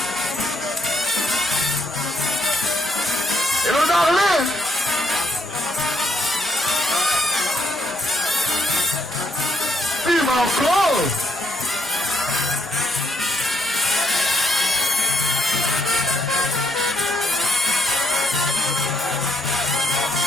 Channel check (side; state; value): both; normal; correlation 0.73